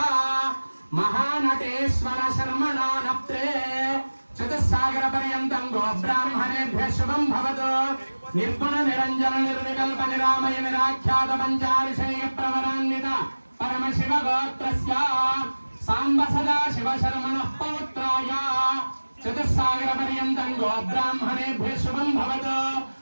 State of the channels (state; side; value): inverted; both; correlation -1.00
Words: మహానటేశ్వర శర్మణా నప్త్రే చతుస్సాగర పర్యంతం గో బ్రాహ్మణేభ్య శుభం భవతు. నిర్గుణ నిరంజన నిర్వికల్ప నిరామయ నిరాఖ్యాత పంచారిషేయ ప్రవరాన్విత పరమ శివ గోత్రస్య సాంబ సదా శివ శర్మణః పౌత్రాయ చతుస్సాగర పర్యంతం గో బ్రాహ్మణేభ్య శుభం భవతు.